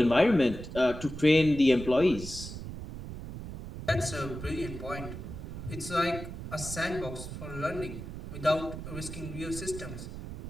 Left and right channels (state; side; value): noise; right; rumble, 9 dB below the sound